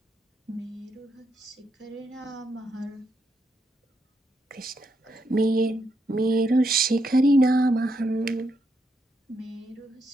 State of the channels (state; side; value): normal; both; correlation 0.79